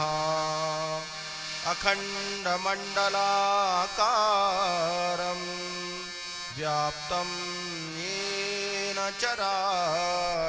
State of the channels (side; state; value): both; identical; correlation 1.00